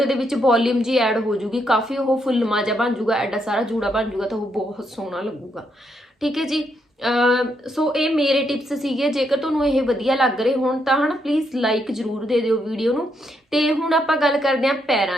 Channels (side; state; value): both; normal; correlation 0.78